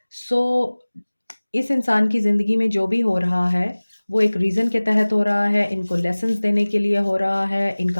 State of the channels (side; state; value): both; inverted; correlation -1.00